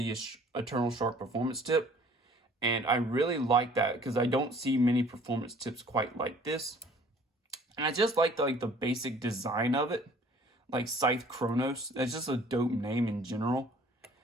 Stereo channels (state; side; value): normal; both; correlation 0.54